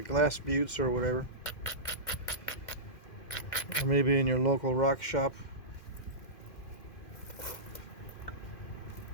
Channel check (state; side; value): late; right; 2.1 ms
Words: glass buttes or whatever, or maybe in your local rock shop.